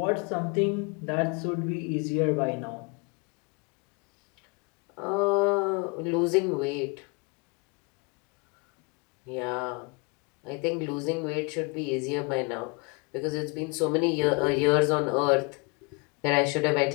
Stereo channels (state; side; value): quieter; right; 30.5 dB